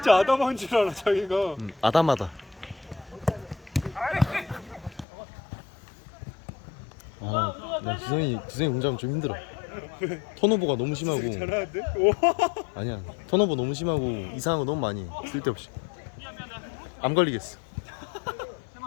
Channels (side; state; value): right; drops out; at 5.1 s